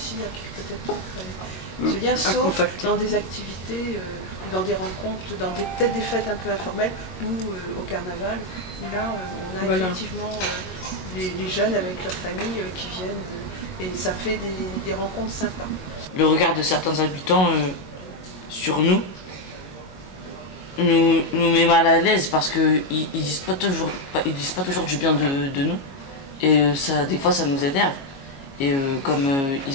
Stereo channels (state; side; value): late; right; 22 ms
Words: à peut-être créer ce lien, sauf dans des activités, dans des rencontres, dans peut-être des fêtes un peu informelles, ou au carnaval, où là, on a effectivement les jeunes avec leurs familles qui viennent, et ça fait des rencontres sympas. Le regard de certains habitants sur nous, nous met mal à l'aise parce qu'ils disent pas toujours du bien de nous. Et ça, des fois, ça nous énerve. Et comme